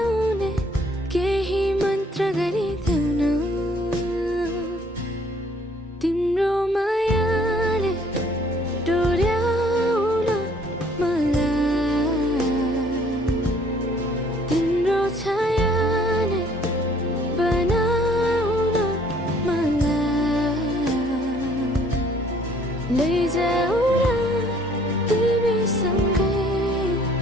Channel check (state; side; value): normal; both; correlation 0.60